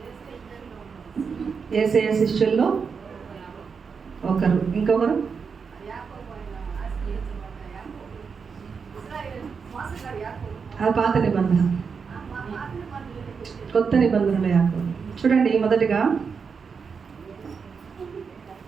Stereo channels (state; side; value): quieter; left; 5.7 dB